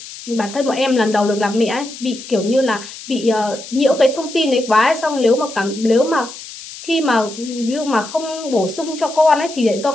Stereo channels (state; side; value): noise; left; hiss, 14 dB below the sound